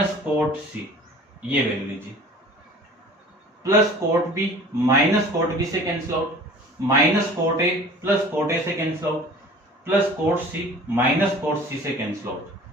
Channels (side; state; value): both; normal; correlation 0.45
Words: cot C, ये वैल्यू लीजिए। Plus cot B minus cot B से cancel out, minus cot A plus cot A से cancel out, plus cot C minus cot C से cancel out.